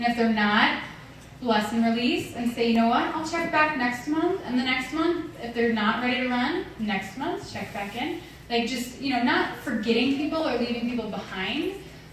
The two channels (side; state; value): both; identical; correlation 1.00